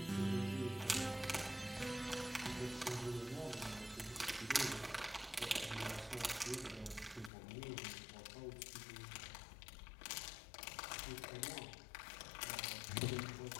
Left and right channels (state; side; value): drops out; right; at 7.3 s